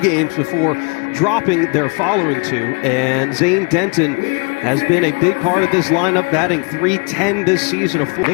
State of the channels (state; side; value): quieter; right; 33.0 dB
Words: before dropping their following 2. And Zane Denton has been a big part of this lineup, batting .310 this season. A full